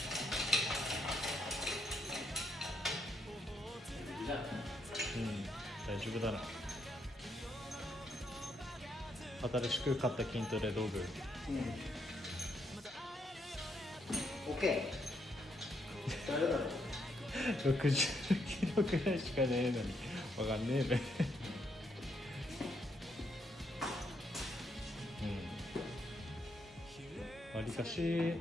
大丈夫だな。新しく買った筋トレ道具。OK。誰だろう。60キロくらいしかねえのにわかんねえべ。わりかし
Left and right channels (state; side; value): normal; both; correlation 0.76